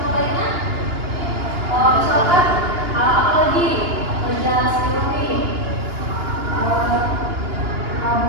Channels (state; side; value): late; left; 2.9 ms